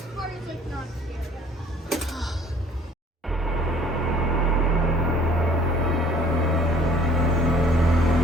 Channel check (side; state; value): both; normal; correlation 0.54